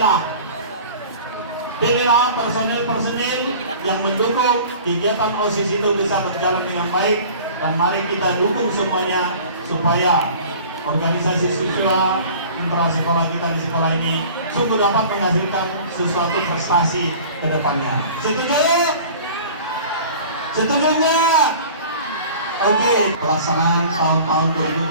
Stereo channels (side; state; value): both; inverted; correlation -0.44